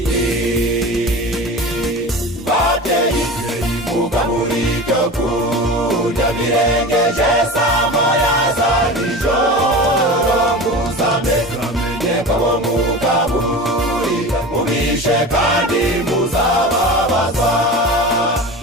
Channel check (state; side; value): normal; both; correlation 0.31